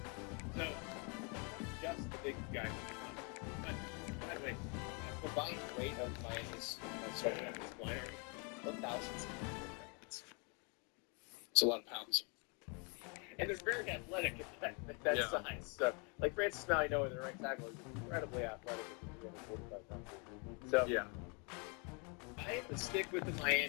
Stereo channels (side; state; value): right; quieter; 34.6 dB